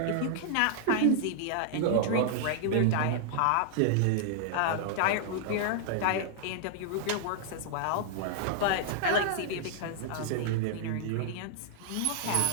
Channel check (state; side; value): different; both; correlation -0.01